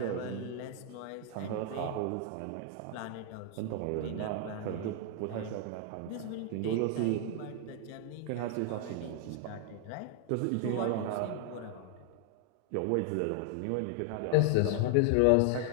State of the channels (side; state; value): both; different; correlation 0.00